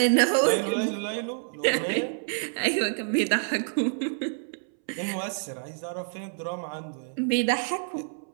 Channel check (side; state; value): left; silent; 60 dB below the other